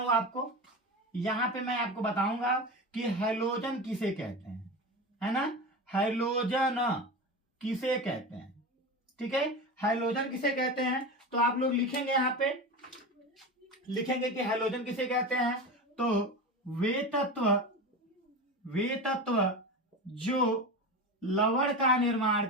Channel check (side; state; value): both; normal; correlation 0.25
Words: आपको, यहाँ पे मैं आपको बताऊंगा कि हेलोजन किसे कहते हैं, है ना। हेलोजन किसे कहते हैं, ठीक है। हेलोजन किसे कहते हैं, तो आप लोग लिखेंगे, यहाँ पे लिखेंगे कि हेलोजन किसे कहते हैं। तो वे तत्व जो लवण का निर्माण